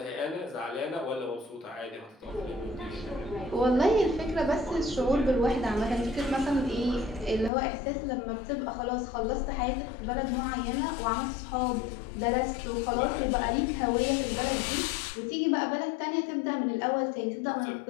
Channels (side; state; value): right; drops out; at 7.5 s